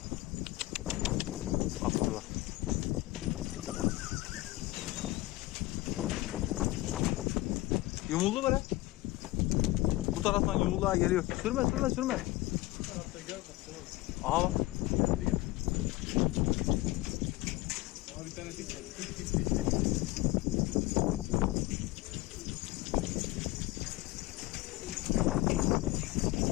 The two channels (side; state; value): right; quieter; 19.0 dB